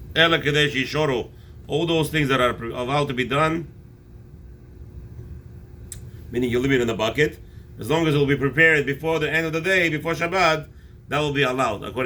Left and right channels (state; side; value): identical; both; correlation 1.00